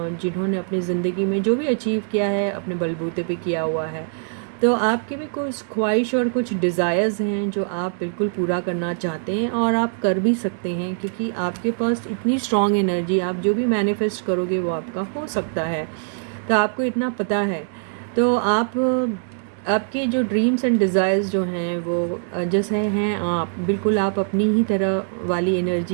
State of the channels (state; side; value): silent; left; digital silence